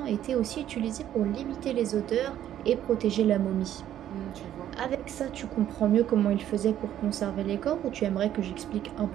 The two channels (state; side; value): quieter; left; 11.4 dB